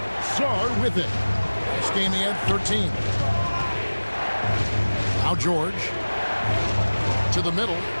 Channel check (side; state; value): both; inverted; correlation -1.00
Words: Sarr with it. This game he had 13. Now George. To the middle.